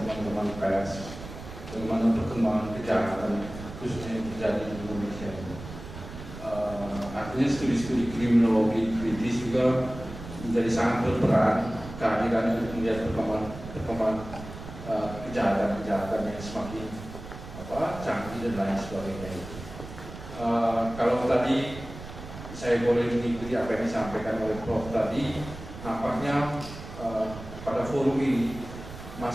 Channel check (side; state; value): right; noise; rumble, 12 dB below the sound